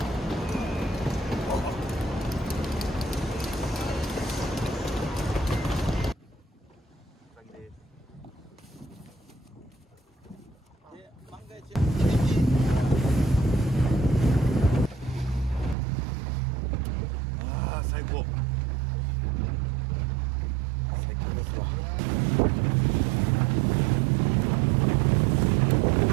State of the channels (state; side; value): drops out; left; at 15.8 s